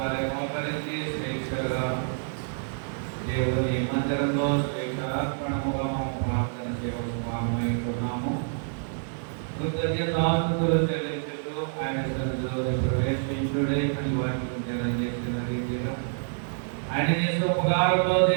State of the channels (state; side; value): silent; left; digital silence